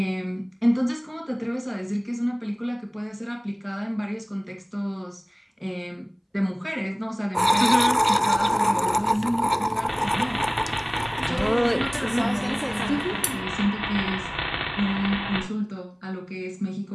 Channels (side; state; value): both; identical; correlation 1.00